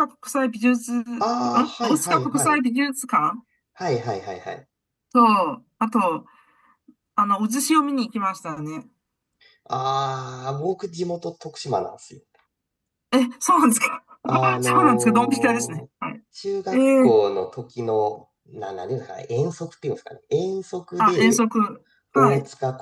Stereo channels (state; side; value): identical; both; correlation 1.00